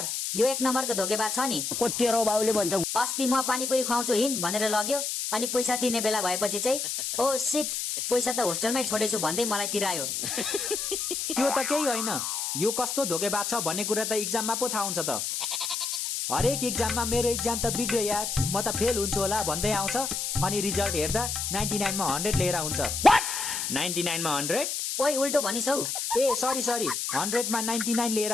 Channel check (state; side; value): noise; left; hiss, 2 dB below the sound